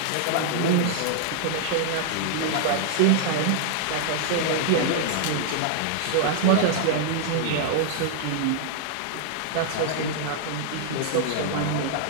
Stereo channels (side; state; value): both; different; correlation -0.01